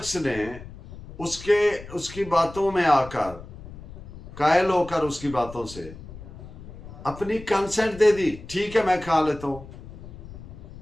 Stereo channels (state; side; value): noise; left; rumble, 15 dB below the sound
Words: ने उसकी बातों में आकर, कायल होकर उसकी बातों से अपनी कंसेंट दे दी, ठीक है मैं खा लेता हूं।